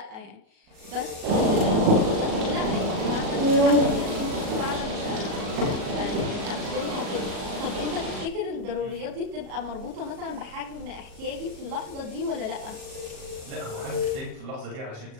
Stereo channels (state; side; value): late; left; 37 ms